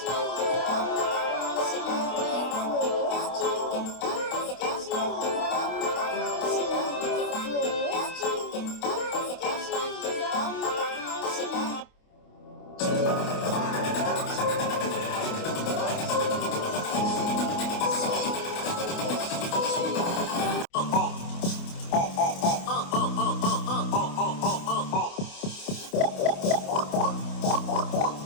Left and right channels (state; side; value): late; right; 28 ms